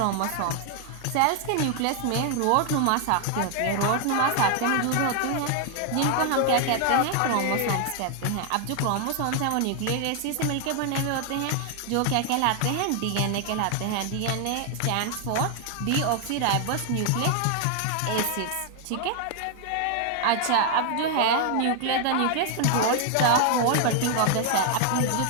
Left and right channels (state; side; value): different; both; correlation 0.00